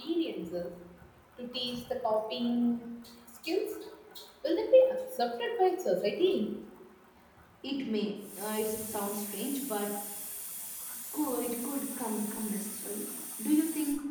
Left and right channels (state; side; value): identical; both; correlation 1.00